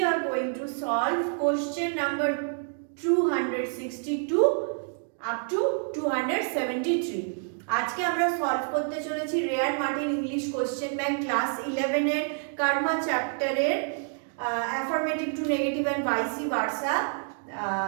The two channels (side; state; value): left; silent; 59 dB below the other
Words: are going to solve question number 262 up to 273. আজকে আমরা solve করতে চলেছি রেয়ার Martin English question bank class 11 এর কর্মা চ্যাপ্টারের affirmative to negative and vice versa